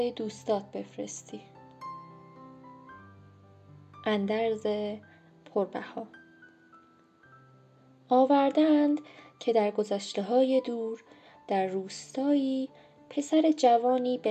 دوستات بفرستی. اندرز پربها. آوردند که در گذشته‌های دور در روستایی پسر جوانی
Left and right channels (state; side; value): identical; both; correlation 1.00